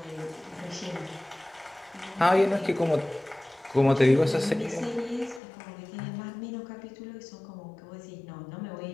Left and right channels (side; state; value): right; drops out; at 5.4 s